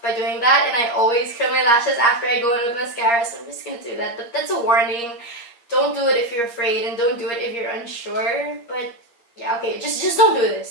by doing that, and I always curl my lashes after I go in with mascara, so I'm just gonna do that. But that's a warning. Don't do it if you're afraid, and don't do it if you're unsure. But yeah, okay, just don't do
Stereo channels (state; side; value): late; right; 8.5 ms